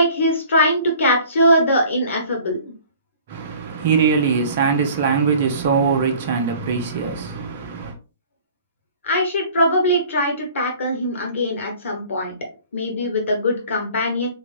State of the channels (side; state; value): both; inverted; correlation -0.49